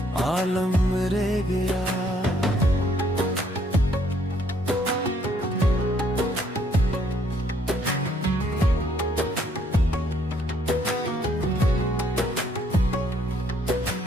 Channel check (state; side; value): normal; both; correlation 0.66